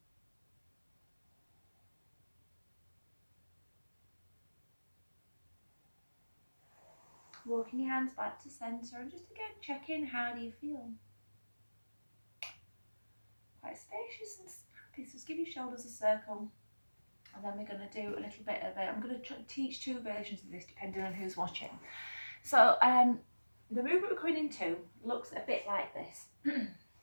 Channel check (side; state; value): both; inverted; correlation -1.00